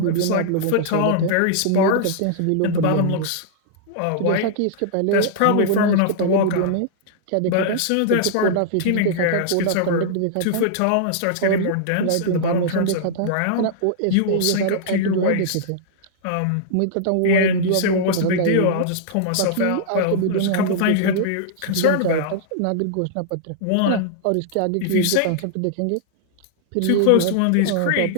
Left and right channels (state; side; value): different; both; correlation -0.01